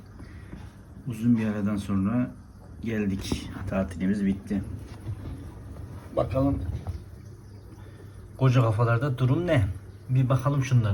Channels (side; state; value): both; identical; correlation 1.00